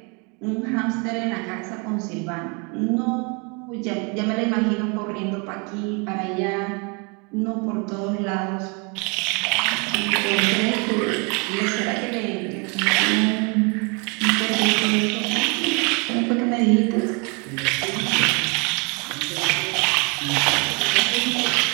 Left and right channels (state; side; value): quieter; left; 32.6 dB